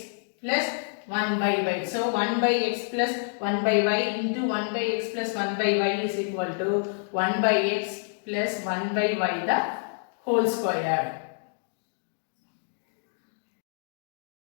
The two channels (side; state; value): right; silent; digital silence